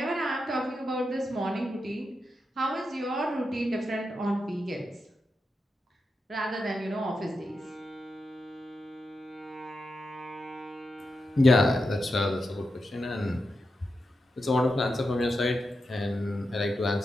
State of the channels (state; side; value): normal; both; correlation 0.88